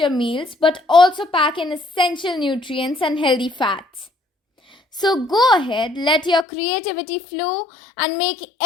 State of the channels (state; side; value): drops out; right; at 6.5 s